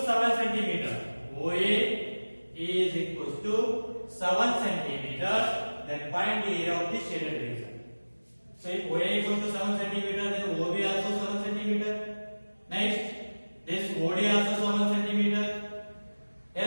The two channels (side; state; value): both; inverted; correlation -1.00